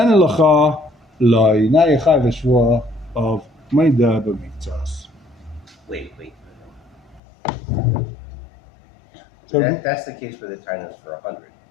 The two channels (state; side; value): drops out; right; at 7.2 s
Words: meida b'miktsas. Wait. So that's the case where the time is for 100.